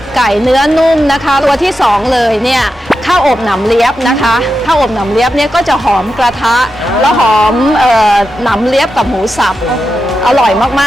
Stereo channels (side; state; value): both; normal; correlation 0.89